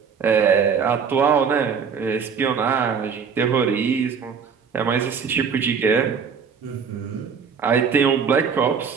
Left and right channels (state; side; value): quieter; left; 6.4 dB